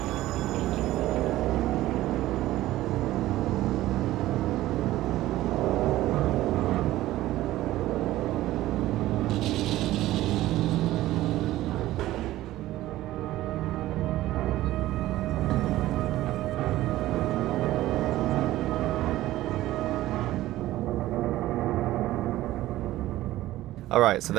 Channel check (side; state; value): left; quieter; 15.6 dB